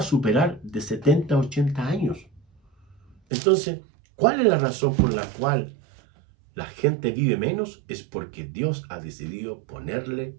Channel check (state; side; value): drops out; left; at 3.2 s